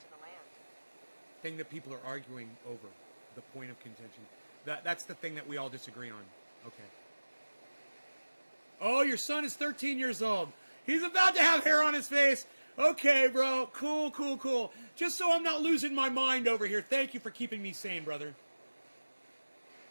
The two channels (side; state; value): both; inverted; correlation -1.00